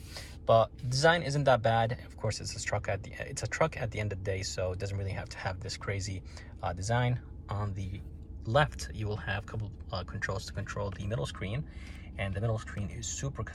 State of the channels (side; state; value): both; identical; correlation 1.00